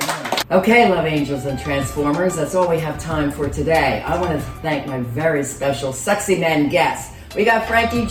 Okay, love angels and transformers, that's all we have time for today. I want to thank my very special sexy men guests. We got Frankie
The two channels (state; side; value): identical; both; correlation 1.00